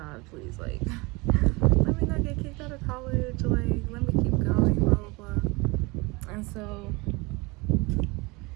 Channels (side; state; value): left; quieter; 25.4 dB